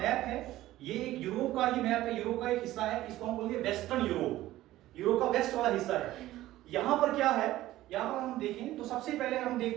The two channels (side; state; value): left; quieter; 15.4 dB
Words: है, ये एक यूरोप का ही मैप है, यूरोप का एक हिस्सा है। इसको हम बोलेंगे वेस्टर्न यूरोप, यूरोप का वेस्ट वाला हिस्सा है। यहाँ पर क्या है, यहाँ पर हम देखें तो सबसे पहले हम